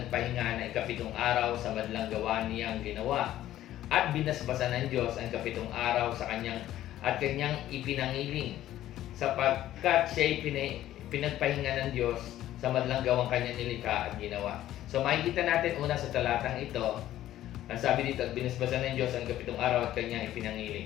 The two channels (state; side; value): quieter; right; 13.3 dB